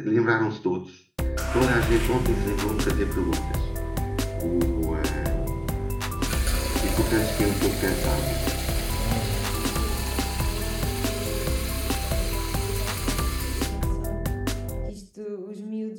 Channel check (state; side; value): identical; both; correlation 1.00